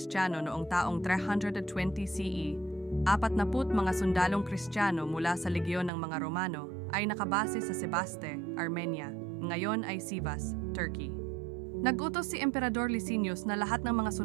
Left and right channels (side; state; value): left; drops out; at 5.9 s